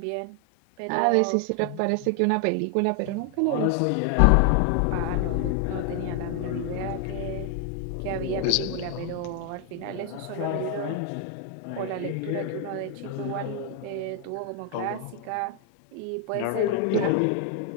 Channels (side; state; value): both; different; correlation 0.00